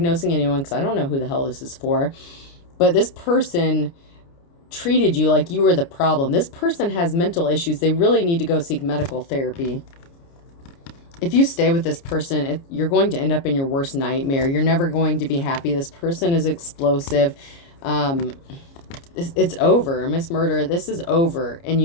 anyone because I don't know who the hell this is for. But this person treated you like you were the problem. This person has mental issues. They really need to go seek medical therapy. If you stay with this person, you're going to end up in your worst nightmare. You're never going to be happy. This person is explosive. It's over. Miss Murder, this is over. And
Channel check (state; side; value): late; right; 29 ms